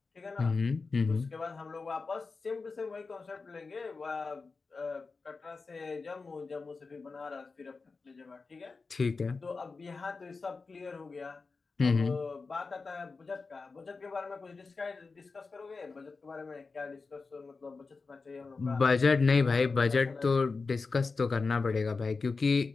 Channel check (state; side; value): quieter; right; 4.3 dB